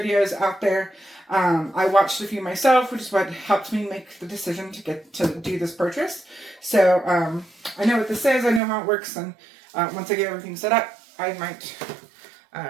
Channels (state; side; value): drops out; left; at 8.6 s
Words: out there. I watched a few myself, which is what helped me make the decision to do this purchase. So I know what this is, I know how it works, and once I get everything set up, I might